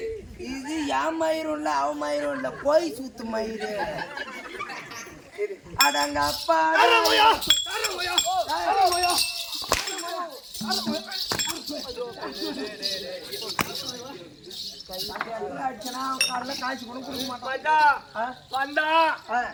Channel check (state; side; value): identical; both; correlation 1.00